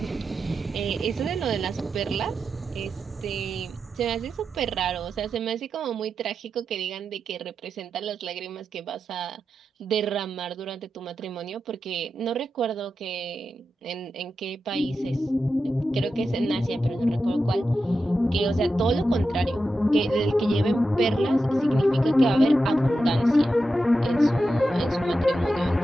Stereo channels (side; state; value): both; normal; correlation 0.89